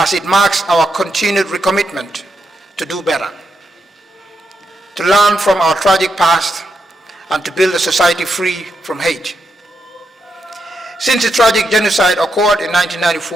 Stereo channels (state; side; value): normal; both; correlation 0.83